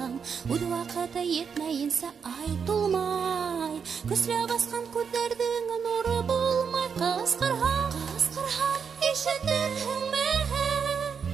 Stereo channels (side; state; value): left; quieter; 6.5 dB